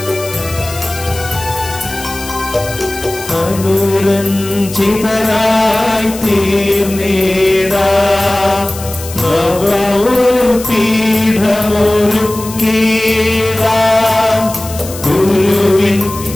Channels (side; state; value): left; noise; hiss, 13 dB below the sound